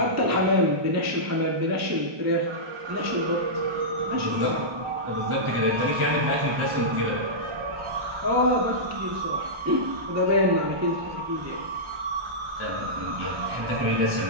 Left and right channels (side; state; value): left; late; 1.2 ms